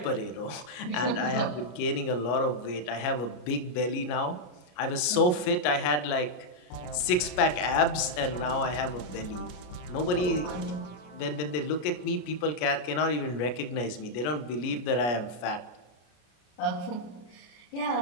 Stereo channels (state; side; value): late; right; 33 ms